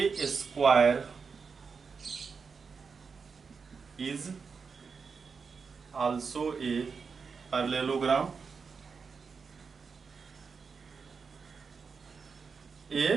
square is also a parallelogram.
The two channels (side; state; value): left; quieter; 5.4 dB